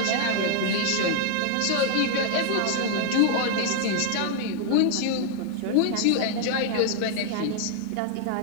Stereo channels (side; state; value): both; different; correlation 0.00